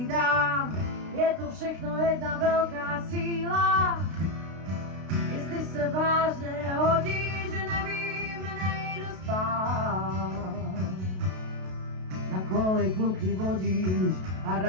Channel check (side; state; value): left; late; 32 ms